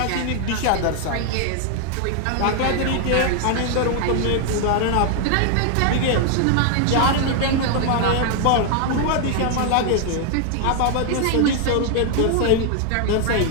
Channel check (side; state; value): both; different; correlation 0.00